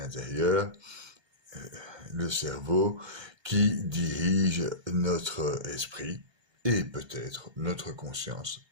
le cerveau, qui dirige notre esprit et peut-être notre conscience,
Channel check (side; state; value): left; late; 1.2 ms